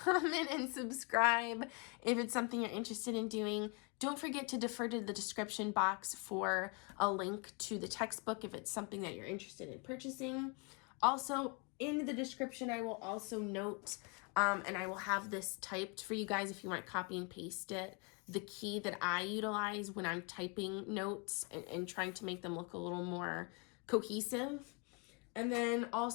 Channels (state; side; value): quieter; right; 32.3 dB